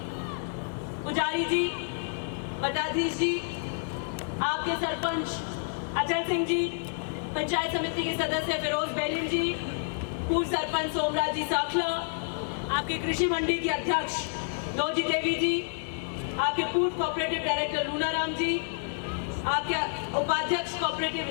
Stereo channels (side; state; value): right; silent; 58 dB below the other